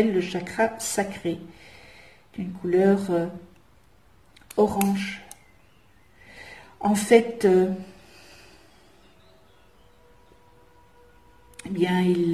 le chakra sacré, d'une couleur orange. En fait, il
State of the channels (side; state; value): both; identical; correlation 1.00